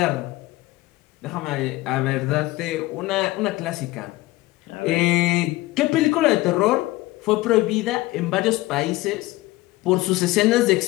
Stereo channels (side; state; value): right; quieter; 19.0 dB